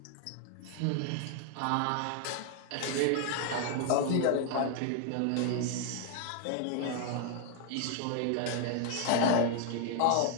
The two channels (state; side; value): different; both; correlation 0.00